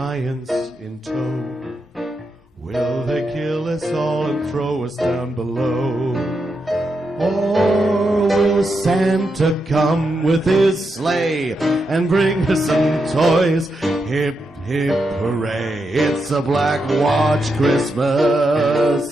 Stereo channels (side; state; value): both; normal; correlation 0.84